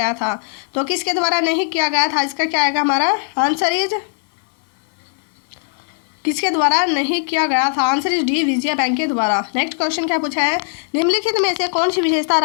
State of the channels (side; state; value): right; silent; 61 dB below the other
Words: था? तो किसके द्वारा नहीं किया गया था? इसका क्या आएगा हमारा? आंसर इज किसके द्वारा नहीं किया गया था? Answer is D, Vijaya bank के द्वारा। नेक्स्ट क्वेश्चन क्या पूछा है? निम्नलिखित में से कौन सी विशेषता